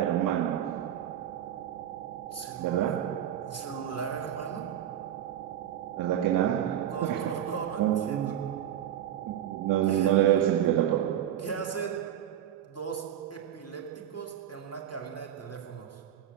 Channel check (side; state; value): left; quieter; 10.6 dB